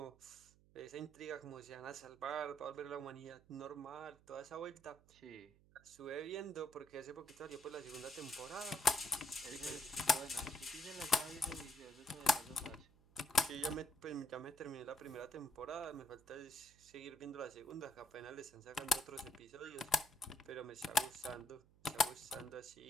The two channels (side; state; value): right; noise; hum, 27 dB below the sound